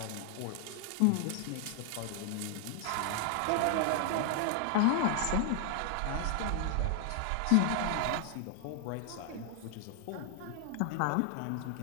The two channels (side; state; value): both; different; correlation 0.00